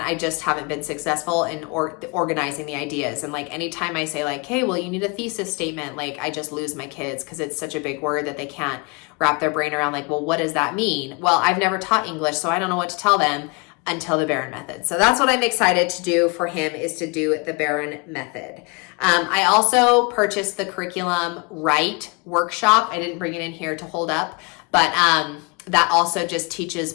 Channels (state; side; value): quieter; right; 30.3 dB